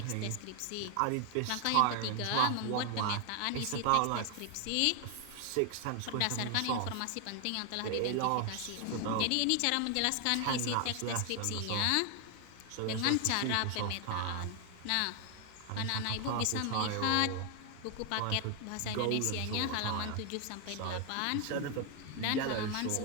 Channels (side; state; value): both; different; correlation 0.00